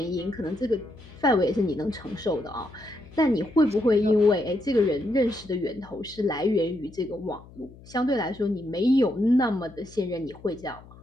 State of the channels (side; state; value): left; noise; hum, 21 dB below the sound